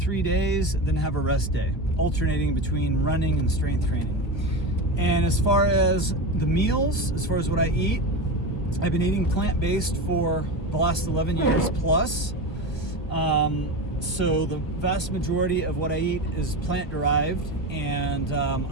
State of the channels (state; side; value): late; right; 1.6 ms